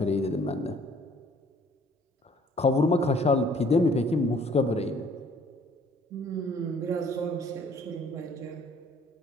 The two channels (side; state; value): both; normal; correlation 0.58